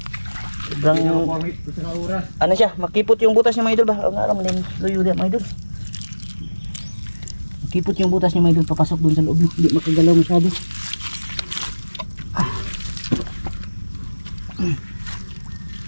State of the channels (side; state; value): both; inverted; correlation -1.00